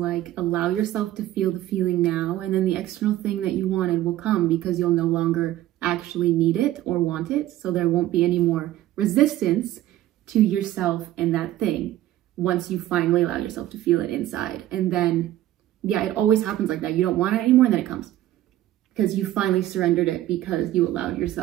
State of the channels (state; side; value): quieter; left; 14.0 dB